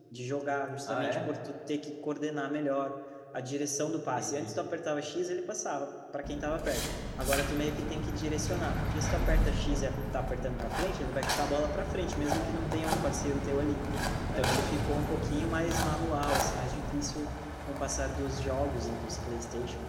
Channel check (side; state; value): both; identical; correlation 1.00